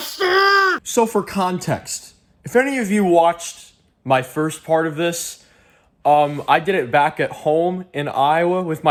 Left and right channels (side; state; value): both; identical; correlation 1.00